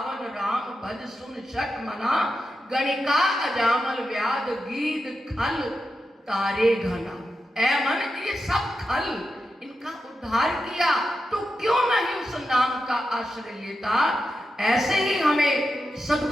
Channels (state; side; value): normal; both; correlation 0.89